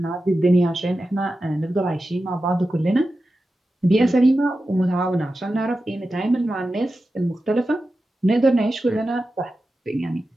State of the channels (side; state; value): both; normal; correlation 0.92